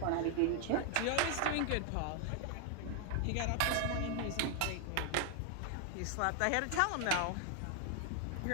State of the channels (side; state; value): both; different; correlation 0.00